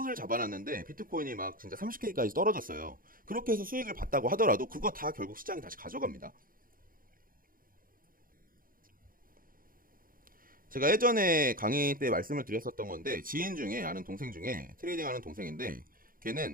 잡아놨는데 비트코인이 막 진짜 30K까지 떨어졌어요. 그렇게 해서 수익을 봤다고 하더라도 그거 다 결국 시장이 다시 가져갑니다. 제가 예전에 강의 때 말씀을 드렸었던 건데, 지인 중에, 아는 동생 중에 트레이딩 하는 동생인데,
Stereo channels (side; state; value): left; late; 0.41 ms